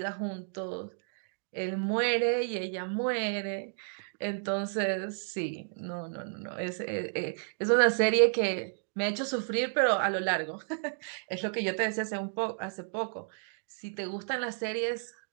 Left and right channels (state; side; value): silent; left; digital silence